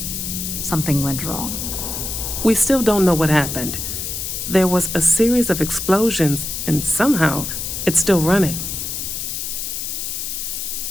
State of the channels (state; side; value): noise; left; hiss, 4 dB below the sound